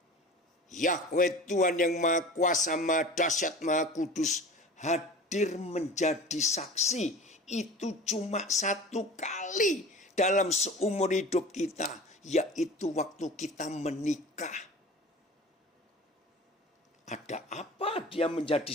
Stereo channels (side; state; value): both; normal; correlation 0.38